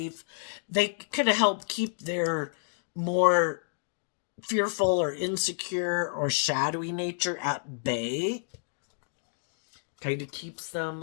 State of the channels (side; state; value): right; silent; digital silence